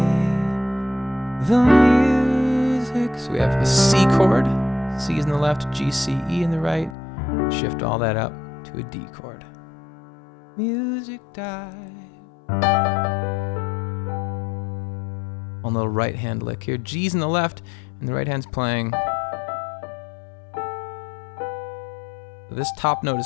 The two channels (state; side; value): drops out; right; at 7.0 s